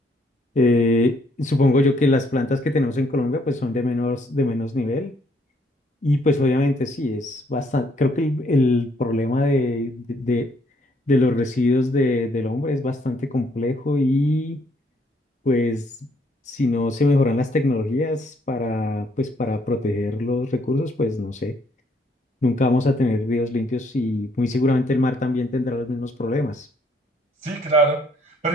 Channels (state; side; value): normal; both; correlation 0.68